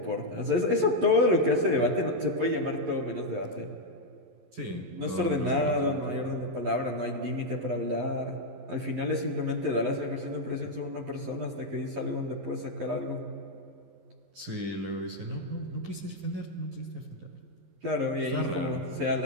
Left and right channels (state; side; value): late; left; 11 ms